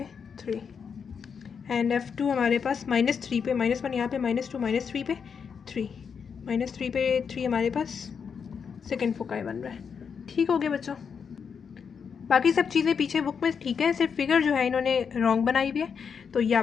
3 एंड F2 हमारे पास -3 पे -1 यहाँ पे -2 -3 पे 3 -3 पे 3 हमारे पास सेकंड फोकाई बन रहा है। ठीक हो गया बच्चों, बाकी सब चीज़ें पीछे बुक में ठीक है, सिर्फ फिगर जो है इन्होंने रॉन्ग बनाई हुई है, तो ये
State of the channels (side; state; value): right; quieter; 6.5 dB